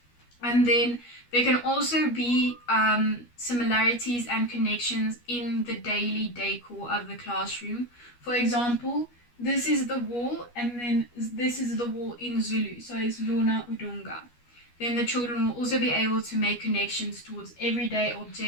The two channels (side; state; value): right; late; 12 ms